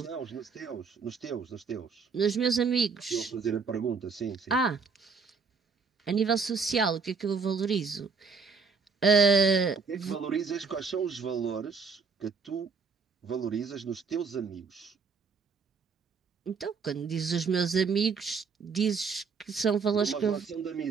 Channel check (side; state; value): left; quieter; 5.1 dB